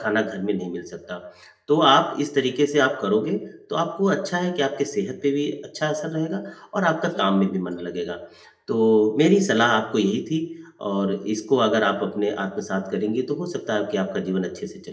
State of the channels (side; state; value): both; identical; correlation 1.00